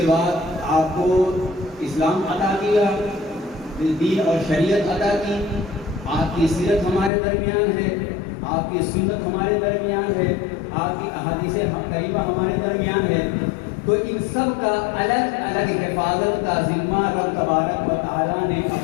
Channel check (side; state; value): right; drops out; at 7.1 s